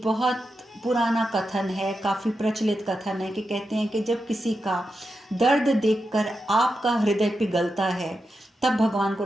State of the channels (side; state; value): both; normal; correlation 0.88